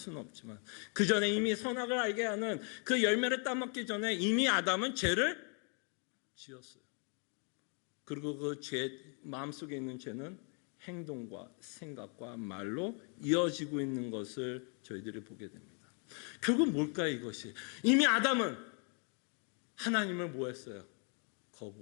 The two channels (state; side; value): quieter; right; 39.9 dB